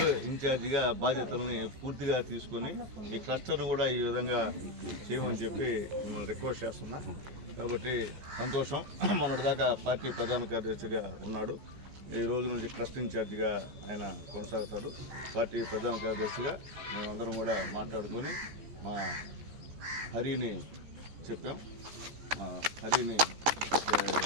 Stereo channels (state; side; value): late; left; 14 ms